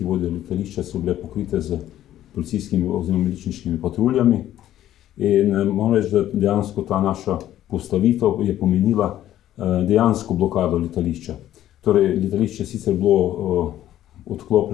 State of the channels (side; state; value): right; quieter; 12.6 dB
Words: vodijo letališče, so bile pokrite z policijskimi oziroma miličniškimi patruljami. In moram reči, da dejansko ta naša postavitev je pomenila dejansko blokado letališča. Torej, letališče sicer bilo